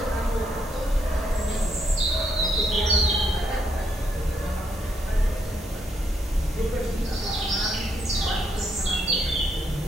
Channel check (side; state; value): both; normal; correlation 0.76